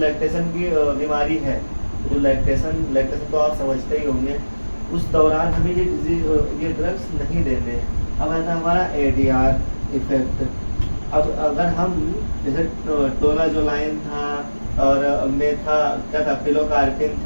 की बीमारी है, जो लैक्टेशन तो आप समझते ही होंगे, उस दौरान हमें ये ड्रग्स नहीं देने। अब आता है हमारा ADR इफेक्ट। अब अगर हम जैसे टोलाजोलाइन था, और क्या था, पिलोकार्पिन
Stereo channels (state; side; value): inverted; both; correlation -1.00